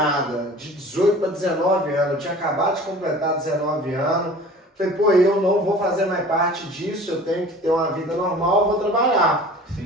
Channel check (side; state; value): both; normal; correlation 0.44